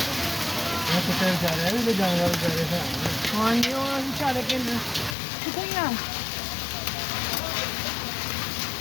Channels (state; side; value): drops out; right; at 5.2 s